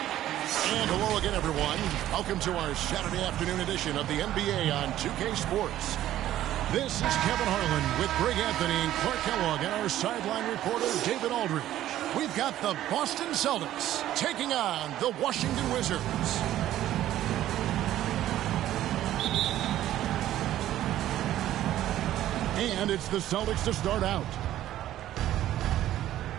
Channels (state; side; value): quieter; left; 13.1 dB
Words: And hello again, everyone. Welcome to our Saturday afternoon edition of the NBA on 2K Sports. This is Kevin Harlan with Greg Anthony and Clark Kellogg and our sideline reporter, David Aldridge. We've got the Boston Celtics taking on the Washington Wizards. And it's the Celtics to start out.